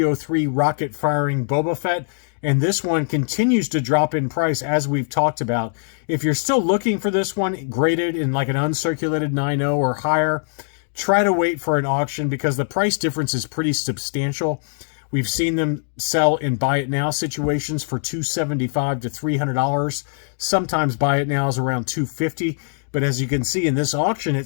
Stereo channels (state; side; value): silent; right; digital silence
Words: rocket firing Boba Fett, and this one continues to drop in price as we've talked about. If you're still looking for this one graded in like an uncirculated 9.0 or higher, try to wait for an auction because the price difference is pretty substantial. We've seen them sell in buy it now situations for $275 to $300. Sometimes buy it now is around $250. But as you can see in this auction, it